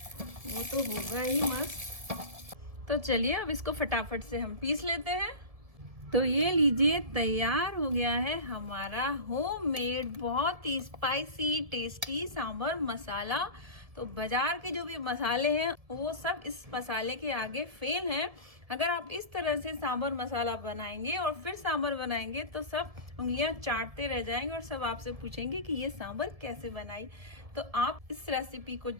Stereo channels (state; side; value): late; left; 1.7 ms